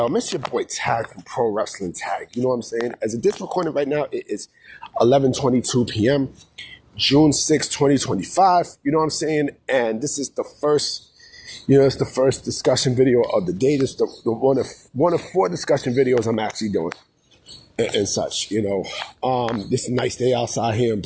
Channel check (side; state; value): both; identical; correlation 1.00